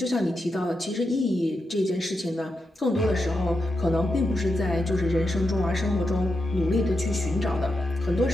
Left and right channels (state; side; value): normal; both; correlation 0.86